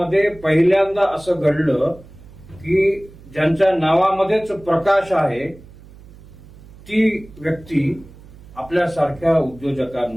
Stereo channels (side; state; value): right; noise; hum, 21 dB below the sound